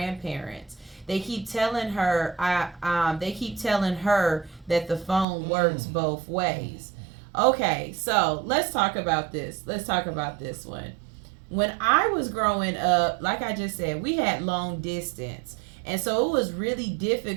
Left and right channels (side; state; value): left; drops out; at 5.2 s